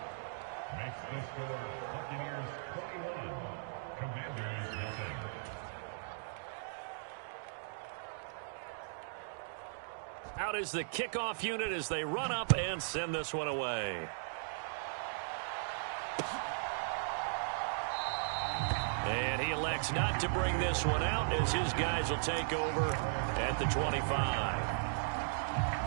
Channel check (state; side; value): silent; left; digital silence